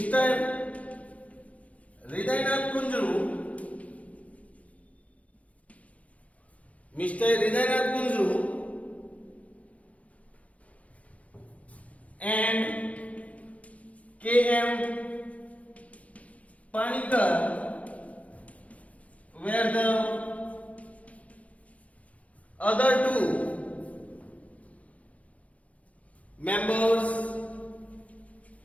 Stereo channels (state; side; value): late; right; 0.066 ms